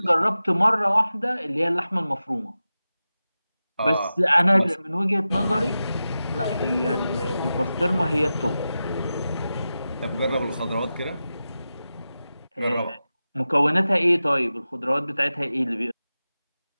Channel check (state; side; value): inverted; both; correlation -0.93